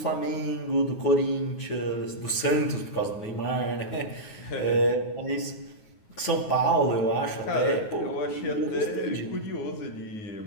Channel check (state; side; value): late; right; 9.5 ms